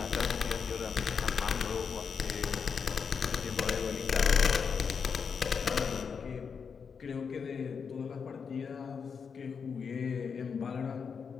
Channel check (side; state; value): right; quieter; 6.1 dB